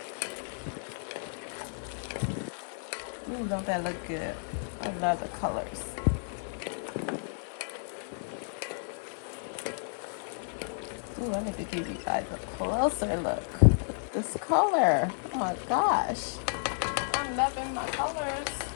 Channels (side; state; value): right; silent; digital silence